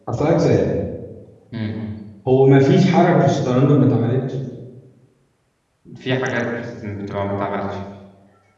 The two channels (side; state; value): both; identical; correlation 1.00